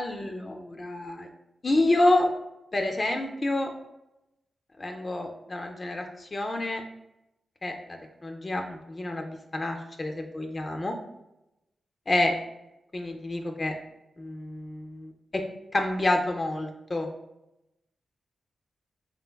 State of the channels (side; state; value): both; normal; correlation 0.95